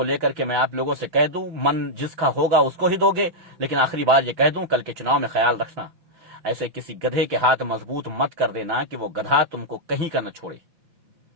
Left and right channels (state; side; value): late; left; 5.9 ms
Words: लेकर के मैं आप लोगों से कह दूं, मन जिसका होगा उसको ही दोगे, लेकिन आखिरी बार ये कह दूं, कल के चुनाव में ख्याल रखना, ऐसे किसी गधे के हाथ मजबूत मत कर देना कि वो गधा तुमको कहीं का न छोड़े।